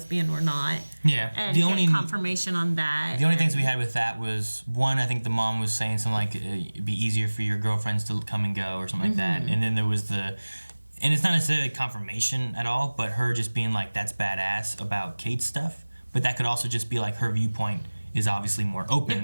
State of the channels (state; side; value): inverted; both; correlation -1.00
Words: or not. Yeah. And get confirmation on that. The only things we had with that was, one, I think the mom was saying something like, it'd be easier for your girlfriends to come and go or something like that. And then there was and it's not necessarily confirmation at all, but her just being like, that's badass about Kate's stuff. But that could also just be like her viewpoint is obviously more